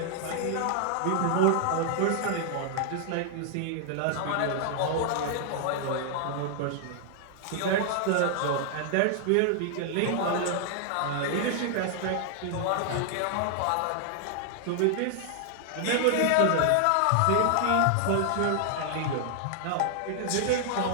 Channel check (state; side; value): different; both; correlation 0.00